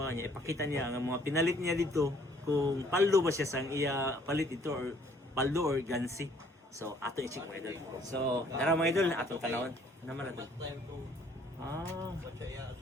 niya, ipakita niya ang mga pinalit niya dito kung paldo ba siya sang iya palit ito or paldo or gansi. So ato i-check mga idol. So tara mga idol ato tanawon naman ato.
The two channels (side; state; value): both; normal; correlation 0.61